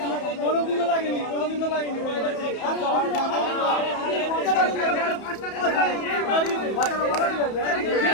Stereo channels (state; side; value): late; right; 31 ms